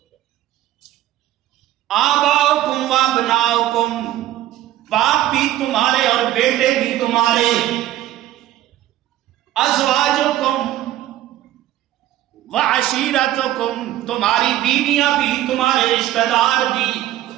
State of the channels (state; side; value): quieter; left; 13.9 dB